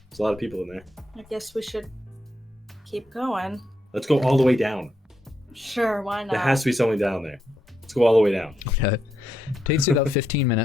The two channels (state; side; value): normal; both; correlation 0.80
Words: There's a lot of people in there. I guess we should keep going. Let's go all the way down. Sure, why not? There has to be someone down there. Let's go all the way down. Okay. Takes you about 15